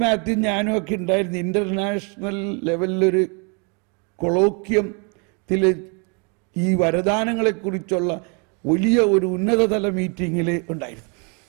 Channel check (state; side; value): quieter; left; 35.4 dB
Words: മാത്യു ഞാനും ഒക്കെ ഉണ്ടായിരുന്നു. ഇന്റർനാഷണൽ ലെവലിലൊരു കൊളോക്യത്തിൽ ഈ വരദാനങ്ങളെക്കുറിച്ചുള്ള വലിയ ഒരു ഉന്നതതല മീറ്റിങ്ങിൽ ഉണ്ടായിരുന്നു.